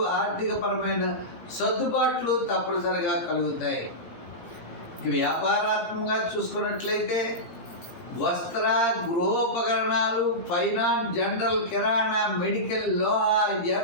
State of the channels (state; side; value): late; right; 17 ms